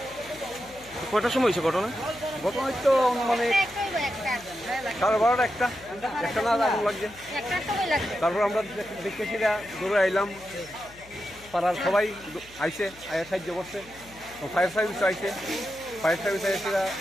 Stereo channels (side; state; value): left; noise; hum, 23 dB below the sound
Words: কয়টার সময় হয়েছে ঘটনা? ঘটনা তো মানে 12:30 একটা না আগুন লাগছে। তারপর আমরা দেখতেছি দৌড়ে আইলাম, পাড়ার সবাই আইসে সাহায্য করছে, ফায়ার সার্ভিস আইসে, ফায়ার সার্ভিস আইসে